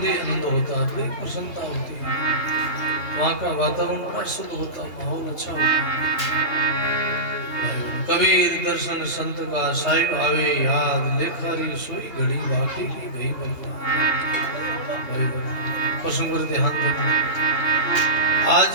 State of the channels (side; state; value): right; late; 2.8 ms